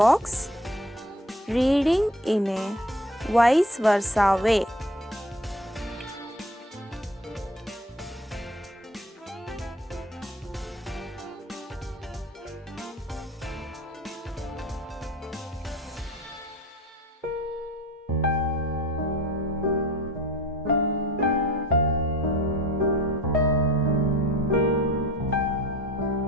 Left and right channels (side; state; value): both; normal; correlation 0.45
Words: reading in a vice versa way.